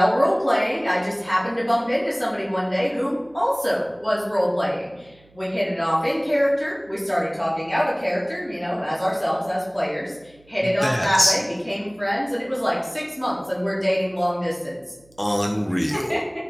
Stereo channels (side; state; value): right; noise; hum, 30 dB below the sound